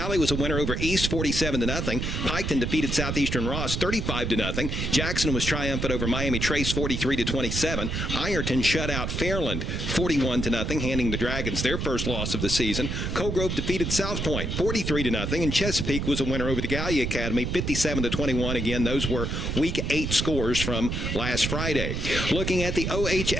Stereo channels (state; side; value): noise; right; rumble, 2 dB below the sound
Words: was a winner over East 47-0. Piketon defeated Southeastern Ross lost 35-0. Jackson was triumphant over Miami Trace 43-27. Ironton shut out Fairland 41-0, handing the Dragons their first loss of the season. Colgrove defeated South Point 43-0, and Chesapeake was a winner over the Gallia Academy 57-21. Again, those were Week 8 scores from last Friday. Looking at the